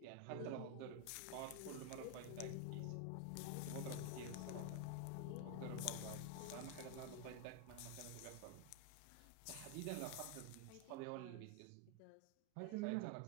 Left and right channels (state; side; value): different; both; correlation 0.01